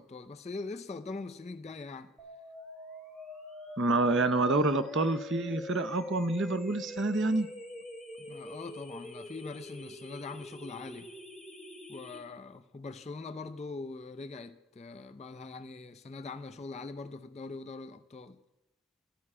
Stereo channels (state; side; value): normal; both; correlation 0.47